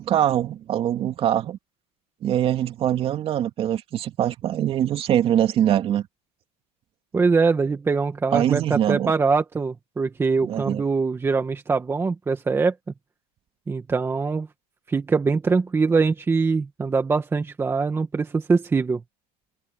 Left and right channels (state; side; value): quieter; left; 5.9 dB